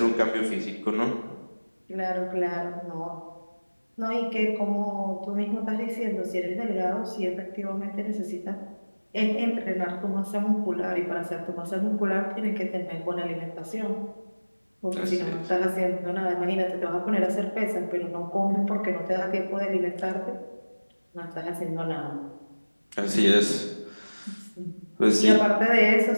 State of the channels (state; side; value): inverted; both; correlation -1.00